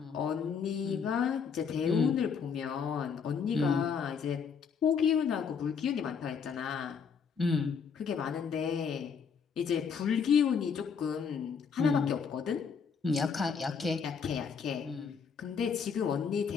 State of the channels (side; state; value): right; quieter; 6.3 dB